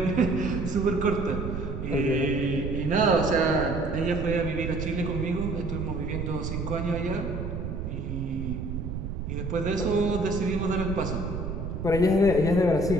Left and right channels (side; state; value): right; noise; rumble, 5 dB below the sound